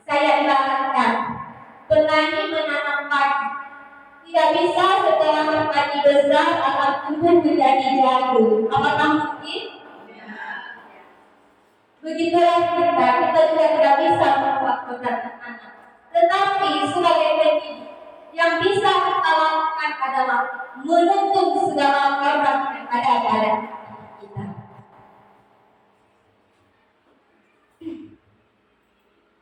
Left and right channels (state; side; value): identical; both; correlation 1.00